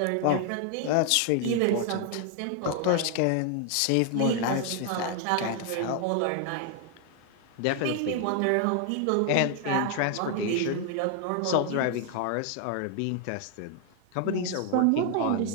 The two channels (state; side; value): different; both; correlation 0.00